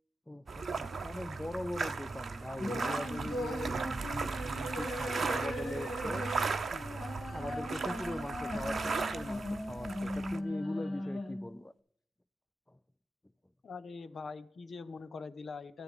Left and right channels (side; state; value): both; normal; correlation 0.89